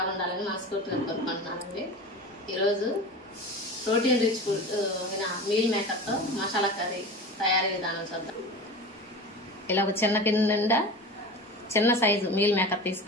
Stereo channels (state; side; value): normal; both; correlation 0.32